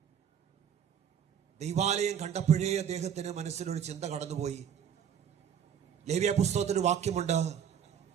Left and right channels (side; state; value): left; quieter; 8.5 dB